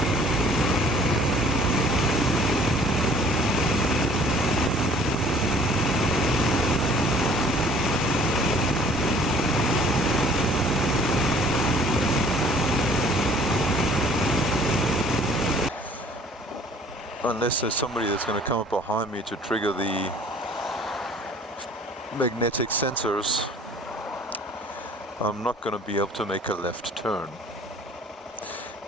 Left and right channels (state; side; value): normal; both; correlation 0.54